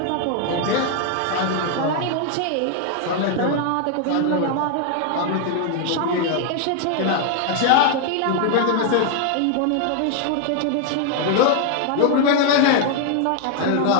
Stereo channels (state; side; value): different; both; correlation 0.00